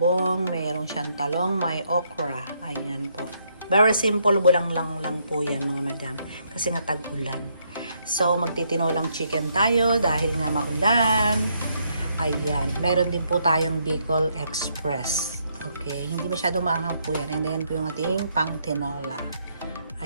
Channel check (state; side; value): inverted; both; correlation -0.73